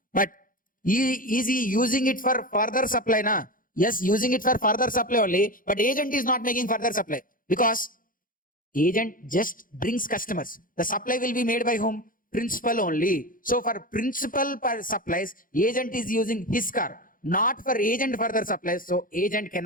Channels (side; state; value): right; late; 0.40 ms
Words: but is he using it for further supply? Na? Yes, using it for further supply only, but agent is not making further supply because agent just brings customers. The supply will be made by whom? Principal only. So for principal supplies, agent is using his car, not for agent further supplies. So agent